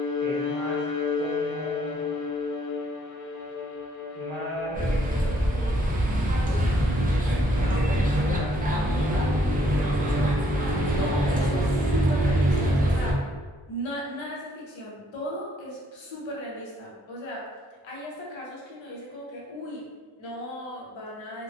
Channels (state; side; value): normal; both; correlation 0.68